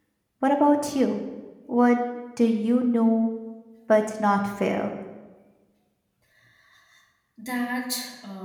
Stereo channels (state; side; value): identical; both; correlation 1.00